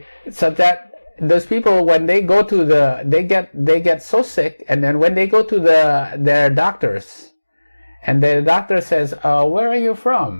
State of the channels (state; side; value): inverted; both; correlation -1.00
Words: those people, when they go to they get so sick, and then when they go to their doctors, and the doctor says, where are you